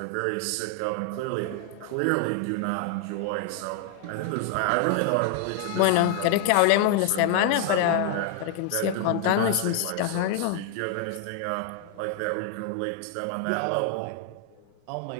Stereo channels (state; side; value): different; both; correlation 0.00